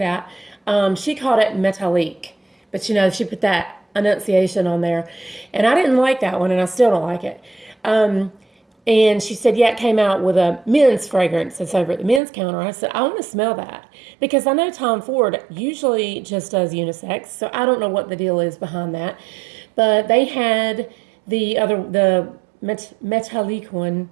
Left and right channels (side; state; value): left; drops out; at 12.2 s